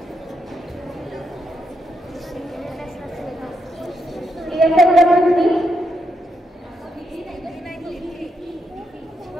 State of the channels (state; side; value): normal; both; correlation 0.80